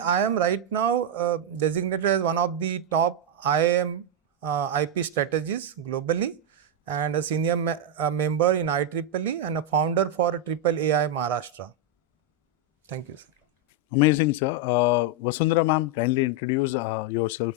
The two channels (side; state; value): both; normal; correlation 0.01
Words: am right now designated as one of the top IIM IP strategists globally, and a senior member in IEEE and a founder for Triple AI Maharashtra. Thank you, sir. Amazing, sir. Vasundhara ma'am, kindly introduce yourself.